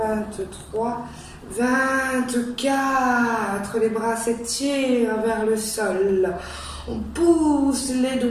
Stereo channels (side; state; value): both; identical; correlation 1.00